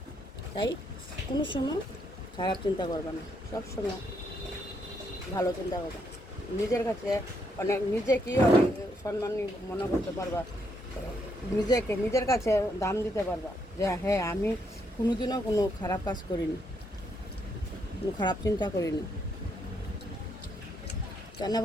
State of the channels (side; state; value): both; normal; correlation 0.75